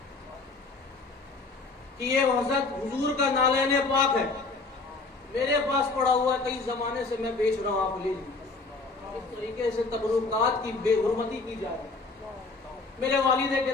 یہ حضرت حضور کا نالین پاک ہے, میرے پاس پڑا ہوا ہے, کئی زمانے سے میں بیچ رہا ہوں, آپ لے لیجیے. اس طریقے سے تبرکات کی بے حرمتی کی جا رہی ہے. میرے والد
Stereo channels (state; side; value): quieter; right; 3.8 dB